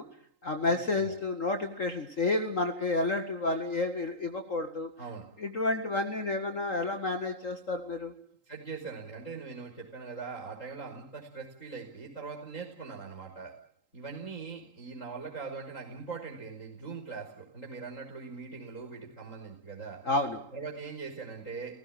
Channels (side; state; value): right; late; 3.8 ms